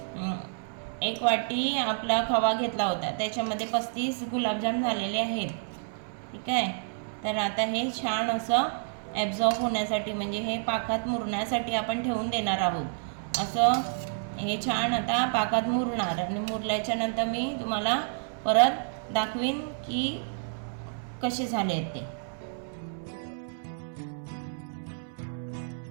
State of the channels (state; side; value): silent; left; 58 dB below the other